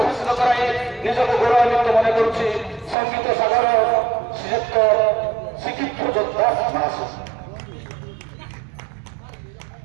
କରାଇ ନିଜକୁ ଗୌରବାନ୍ୱିତ ମନେ କରୁଛି ସଙ୍ଗୀତ ସାଗର ଶ୍ରୀଯୁକ୍ତ ଶିକ୍ଷିତ ଧ୍ୱଜ ଦାସ ମହାଶୟ।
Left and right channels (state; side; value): drops out; left; at 3.0 s